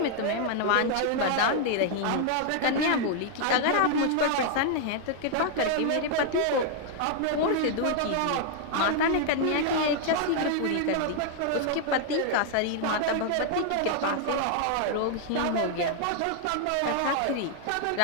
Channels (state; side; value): different; both; correlation -0.01